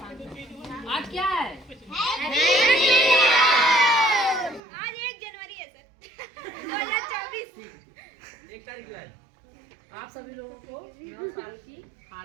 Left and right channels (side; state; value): left; drops out; at 4.6 s